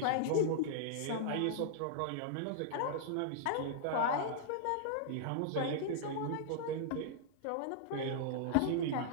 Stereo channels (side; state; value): both; different; correlation -0.01